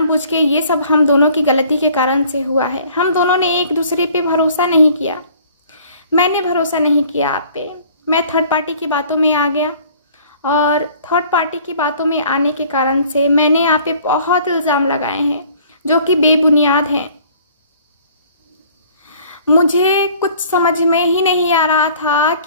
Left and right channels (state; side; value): inverted; both; correlation -0.53